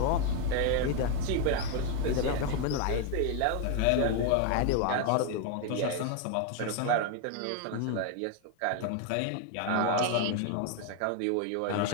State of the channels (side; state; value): both; different; correlation 0.01